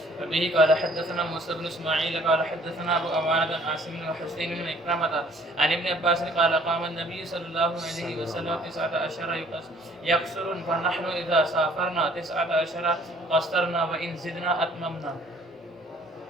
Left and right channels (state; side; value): normal; both; correlation 0.58